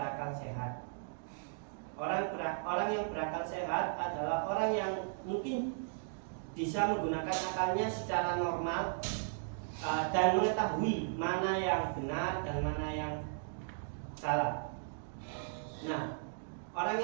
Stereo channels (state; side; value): silent; left; digital silence